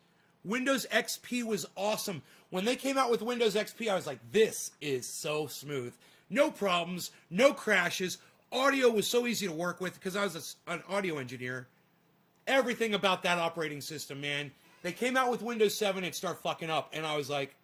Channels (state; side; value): identical; both; correlation 1.00